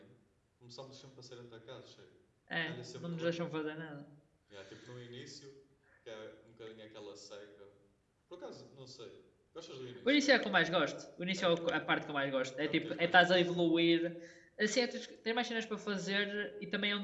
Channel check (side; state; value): both; identical; correlation 1.00